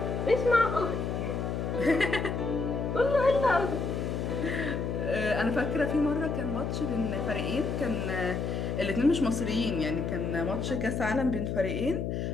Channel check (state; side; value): noise; left; hum, 2 dB below the sound